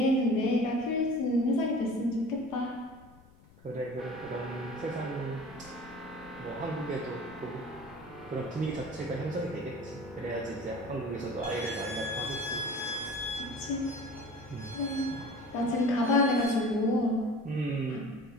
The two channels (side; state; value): left; noise; rumble, 24 dB below the sound